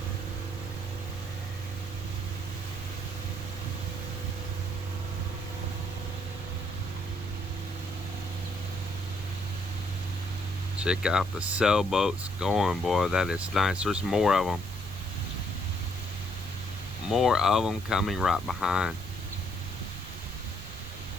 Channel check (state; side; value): noise; right; rumble, 12 dB below the sound